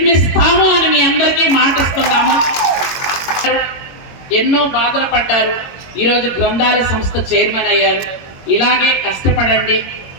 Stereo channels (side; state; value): right; late; 22 ms